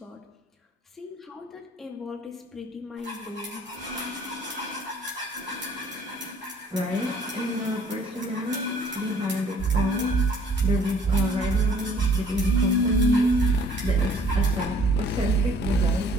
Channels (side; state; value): both; normal; correlation 0.58